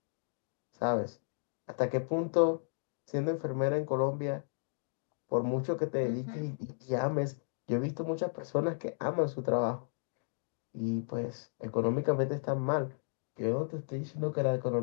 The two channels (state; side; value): silent; right; digital silence